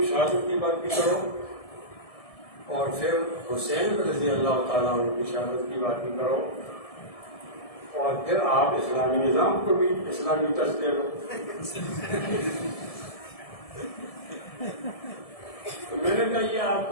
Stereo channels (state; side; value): late; right; 1.7 ms